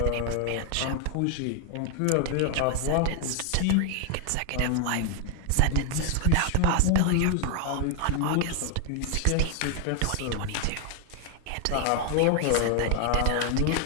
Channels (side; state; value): both; different; correlation 0.01